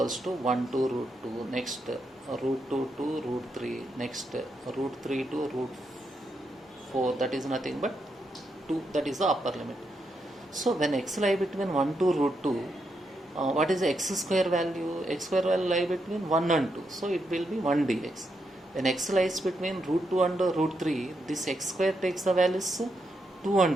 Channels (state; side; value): normal; both; correlation 0.82